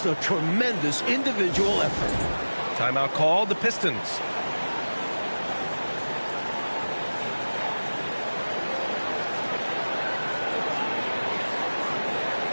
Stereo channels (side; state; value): both; inverted; correlation -1.00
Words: a tremendous individual effort. Timeout called, the Pistons.